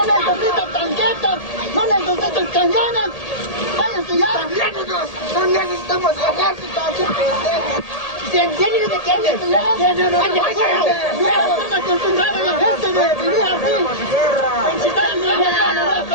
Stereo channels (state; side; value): late; right; 1.8 ms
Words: necesitan tanquetas, no necesitan cañones. Váyanse ya. No necesitamos ejército, aquí pendejos. ¿Tienen de qué andes? ¡Tienen están acostumbrados la gente de vivir así!